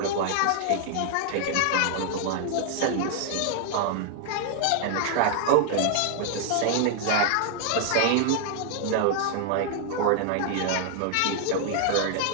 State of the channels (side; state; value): both; different; correlation 0.00